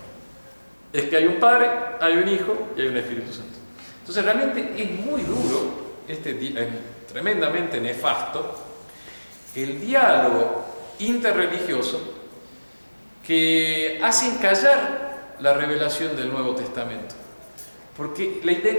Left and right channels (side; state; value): both; inverted; correlation -1.00